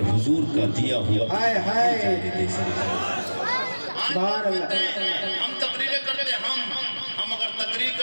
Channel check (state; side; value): inverted; both; correlation -1.00